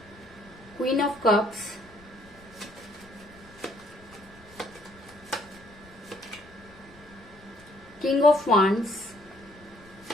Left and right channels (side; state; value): left; noise; rumble, 24 dB below the sound